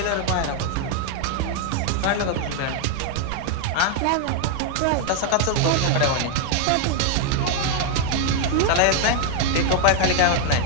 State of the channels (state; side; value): different; both; correlation 0.00